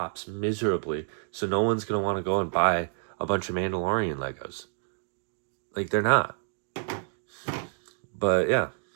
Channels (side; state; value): left; silent; digital silence